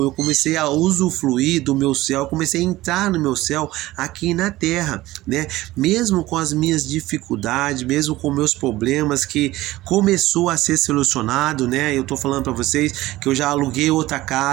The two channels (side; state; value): left; quieter; 17.4 dB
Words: eu comecei a usufruir do meu céu, eu comecei a entrar no meu céu aqui na terra, né? Mesmo com as minhas dificuldades, mesmo com meus problemas que começou a ser solucionado, né? Eu tô falando para vocês que eu já aluguei outra